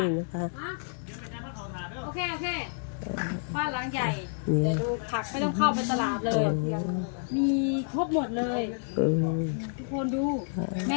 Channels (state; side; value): silent; right; 58 dB below the other